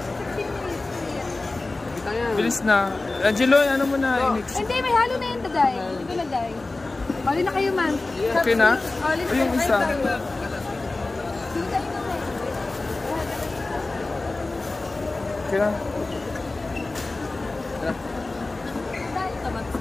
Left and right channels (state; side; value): quieter; right; 3.2 dB